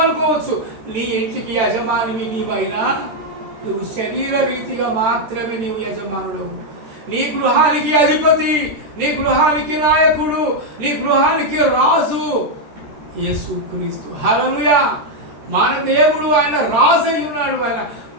అనుకోవచ్చు. నీ ఇంటికి యజమానివి నీవైనా నువ్వు శరీర రీతిగా మాత్రమే నీవు యజమానుడు. నీ గృహానికి అధిపతి, నీ గృహానికి నాయకుడు, నీ గృహానికి రాజు యేసుక్రీస్తు. హల్లెలూయా. మన దేవుడు ఆయన రాజు అయి ఉన్నాడు. ఆయన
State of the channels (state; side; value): late; left; 13 ms